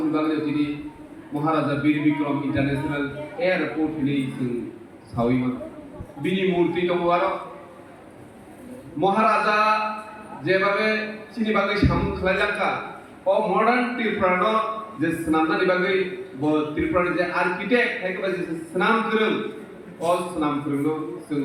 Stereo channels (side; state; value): both; identical; correlation 1.00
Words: বাগৈ তিনি মহারাজা বীর বিক্রম ইন্টারন্যাশনাল এয়ারপোর্ট नि जों सावैमा बिनि मूर्ति दङ आरो মহারাজা যেভাবে চিনি বাগৈ সামুং খালাইলাঙ্কা ও মডার্ন ত্রিপুরানো যে স্নামনানি বাগৈ ব ত্রিপুরাनि যে आर्किटेक्ट थाइखबा जे स्नाम गोरों ও স্নাম गोरोंनो जों